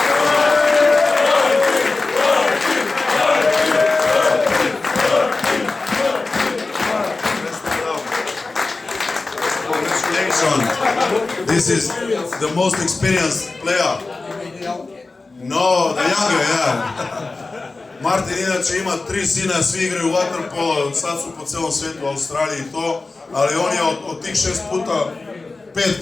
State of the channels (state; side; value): quieter; right; 3.6 dB